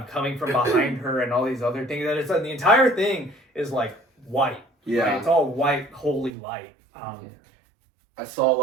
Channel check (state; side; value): drops out; left; at 6.3 s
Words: coming from behind her and all these other things. And it's the entire thing is like white. Yeah, right? It's all white, holy light. I saw a